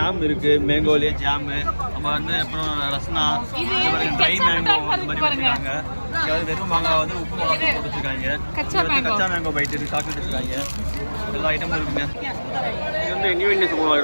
இருக்குது, மேங்கோலேயே ஜாமு. நம்ம வந்து அப்புறம் ரஸ்னா, இந்த மாதிரி ட்ரை மேங்கோ இந்த மாதிரி வச்சுருக்காங்க. அதாவது வெறும் மாங்காய் வந்து உப்பு மிளகா போட்டு வச்சுருக்காங்க. கச்சா மேங்கோ பைட் இருக்குது, சாக்லேட் வச்சுருக்காங்க. எல்லா ஐட்டமும் இருக்குங்க. இது வந்து நியூ இந்தியன் சூப்பர்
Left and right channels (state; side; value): inverted; both; correlation -1.00